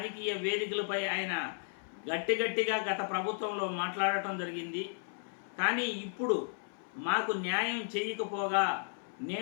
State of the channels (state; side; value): silent; right; 55 dB below the other